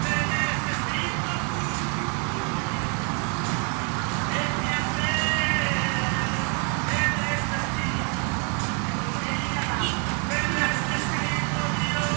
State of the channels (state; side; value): quieter; left; 37.3 dB